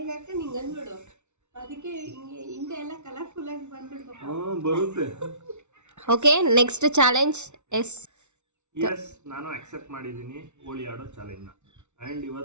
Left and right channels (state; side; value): late; left; 0.83 ms